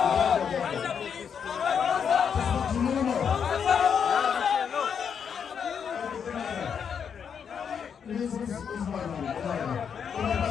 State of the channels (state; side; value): quieter; right; 7.2 dB